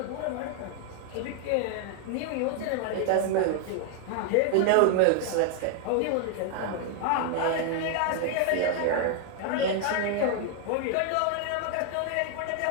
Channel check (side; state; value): both; different; correlation 0.00